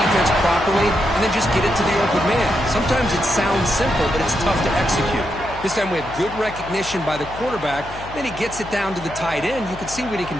properly and then just get it to the open man. Sometimes it sounds simple, but it's tough to execute. This time we have good recognition by the quarterback. Then he gets it down to the tight end. You can see what he can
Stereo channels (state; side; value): noise; left; hum, 15 dB below the sound